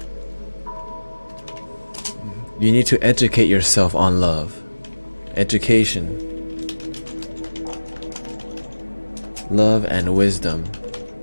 You need to educate yourself on love. Education. Love and wisdom.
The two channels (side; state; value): both; inverted; correlation -1.00